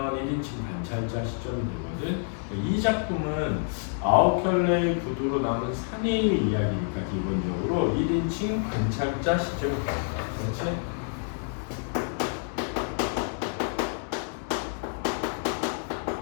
1인칭 관찰자 시점이 되거든. 이 작품은 9켤레의 구두로 남은 사내의 이야기니까 기본적으로 1인칭 관찰자 시점이 됩니다. 그렇지?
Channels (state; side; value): silent; right; 59 dB below the other